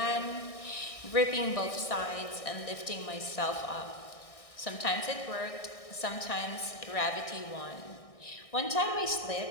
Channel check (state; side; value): late; right; 1.6 ms